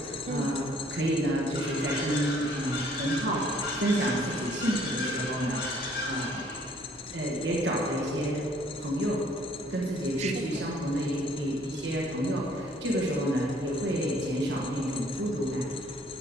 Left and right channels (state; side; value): normal; both; correlation 0.61